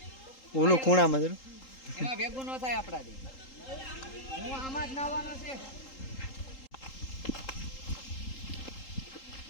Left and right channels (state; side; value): late; right; 3.8 ms